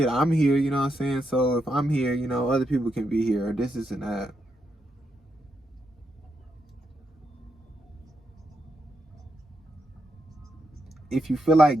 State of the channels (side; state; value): both; normal; correlation 0.82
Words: I'm here, you know what I'm saying? So if I'm here, you know, other people can be here, or this and that. If you feel